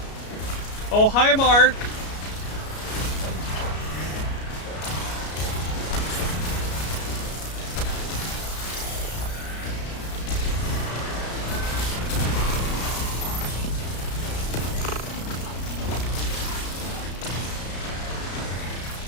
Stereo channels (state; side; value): late; right; 33 ms